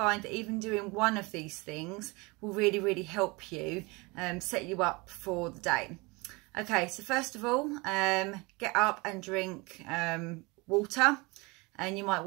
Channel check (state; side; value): quieter; left; 25.9 dB